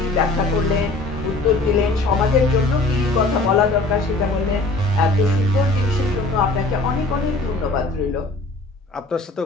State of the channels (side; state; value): right; quieter; 3.1 dB